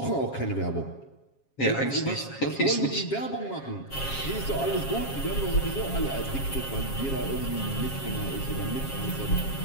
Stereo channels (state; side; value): late; right; 7.4 ms